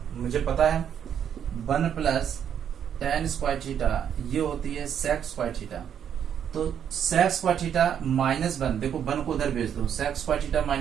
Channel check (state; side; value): quieter; left; 8.8 dB